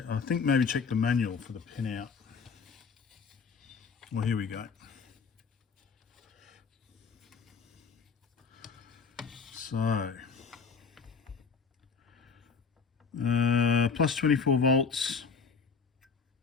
I think maybe check the manual for the pin out. Well, here we go. So plus 24 volts,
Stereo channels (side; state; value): right; quieter; 5.4 dB